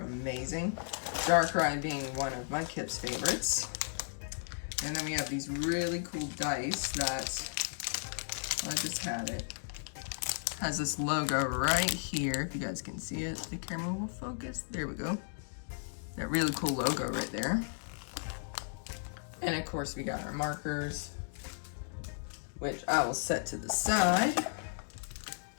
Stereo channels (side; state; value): right; silent; digital silence